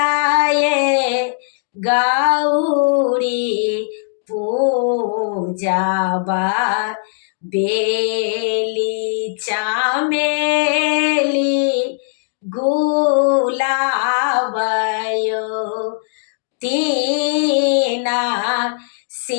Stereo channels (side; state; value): right; silent; digital silence